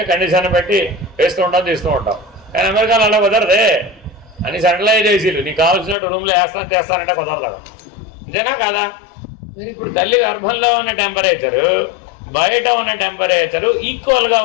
కండిషన్ పెట్టి వేస్తూ ఉంటాం, తీస్తూ ఉంటాం. కానీ అమెరికాలో అలా కుదరదే. అని సెంట్రలైజ్ ఏసీలు నీకు కావాల్సినట్టు రూమ్లో చేస్తానంటే కుదరదు. అంతేనా కాదా? మరి ఇప్పుడు తల్లి గర్భంలో ఉన్న టెంపరేచరు బయట ఉన్న టెంపరేచరు ఈక్వల్గా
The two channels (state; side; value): drops out; right; at 6.0 s